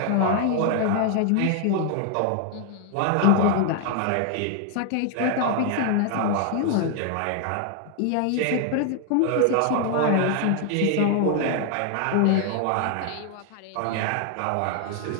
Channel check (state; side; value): different; both; correlation 0.00